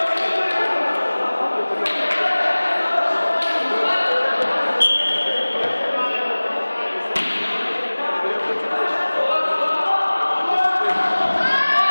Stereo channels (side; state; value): both; inverted; correlation -1.00